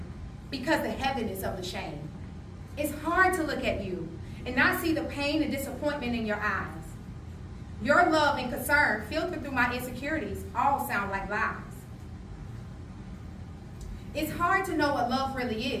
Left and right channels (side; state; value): both; identical; correlation 1.00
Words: because the heaviness of the shame. It's hard to look at you and not see the pain and disappointment in your eyes. Your love and concern filtered through my insecurities all sound like lies. It's hard to know what love really